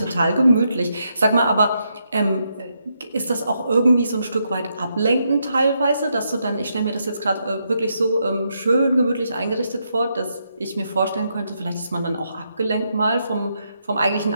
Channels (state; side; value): inverted; both; correlation -0.80